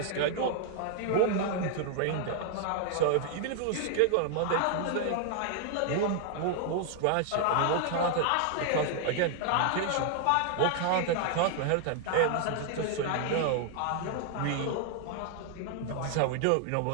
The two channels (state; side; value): different; both; correlation 0.00